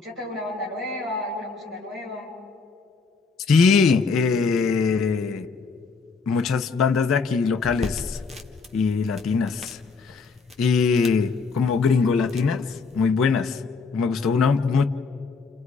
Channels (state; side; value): quieter; right; 4.7 dB